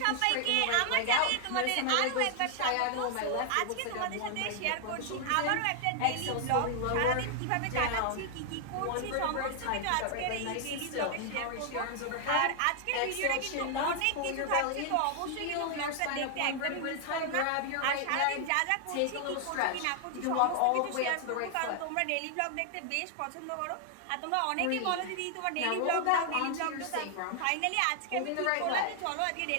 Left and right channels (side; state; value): both; different; correlation 0.00